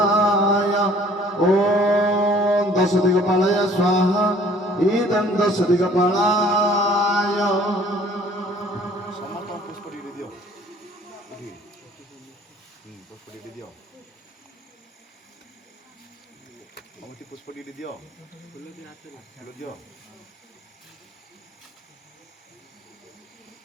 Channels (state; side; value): normal; both; correlation 0.55